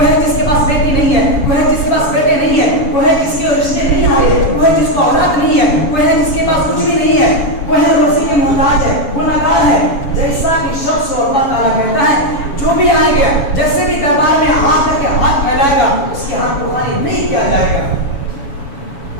ہے جس کے پاس بیٹی نہیں ہے, کوئی ہے جس کے پاس بیٹے نہیں ہے, کوئی ہے جس کے رشتے نہیں آ رہے, کوئی ہے جس کو اولاد نہیں ہے, کوئی ہے جس کے پاس کچھ بھی نہیں ہے, کوئی ہے روزی کے محتاج ہے, گنہگار ہے. جیسا کہ شخص کو اللہ تعالیٰ کہتا ہے جو بھی آئے گا, جیسے بھی دربار میں ہاتھ کر کے ہاتھ پھیلائے گا اس کے ہاتھ کو خالی نہیں کیا جائے گا.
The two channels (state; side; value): late; right; 7.1 ms